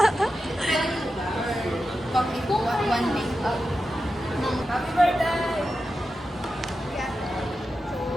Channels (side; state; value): both; normal; correlation 0.91